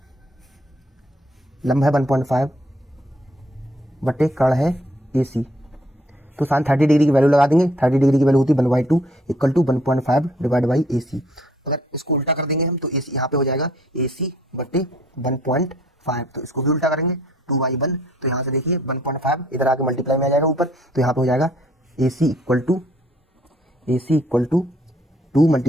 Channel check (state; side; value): normal; both; correlation 0.63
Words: लंब है 1.5 बटे कर्ण है AC, तो साइन 30 डिग्री की वैल्यू लगा देंगे। 30 डिग्री की वैल्यू होती है 1/2 equal to 1.5 divide by AC। अगर इसको उल्टा कर देंगे हम तो AC यहाँ पे हो जाएगा AC बटे 1.5, तो इसको भी उल्टा करेंगे 2/1, तो यहाँ से देखिए 1.5 इधर आके मल्टीप्लाई में आ जाएगा ऊपर, तो यहाँ पे हो जाएगा AC इक्वल टू 2